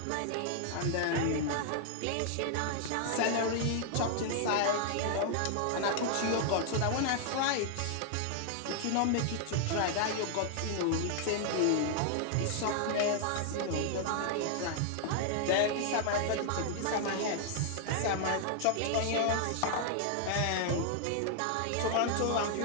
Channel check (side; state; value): both; different; correlation 0.00